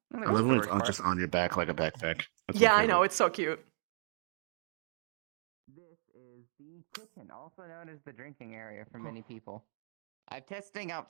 I love when it's just on your back like a backpack. That's Yeah, my I favorite. know. It's so cute. This is the kitchen, also known as the drinking area for many people. I'm testing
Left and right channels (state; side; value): silent; left; digital silence